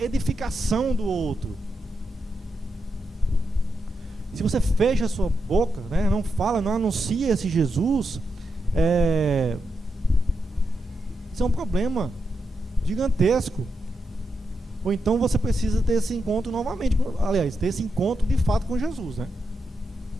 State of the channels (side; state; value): both; normal; correlation 0.85